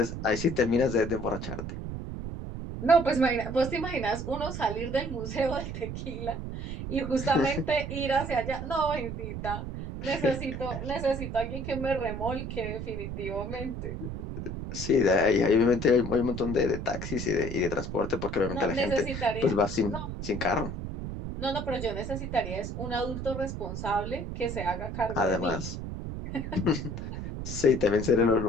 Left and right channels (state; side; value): noise; right; rumble, 6 dB below the sound